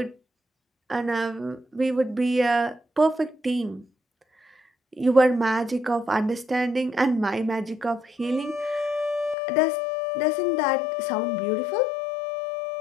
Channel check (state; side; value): drops out; right; at 9.3 s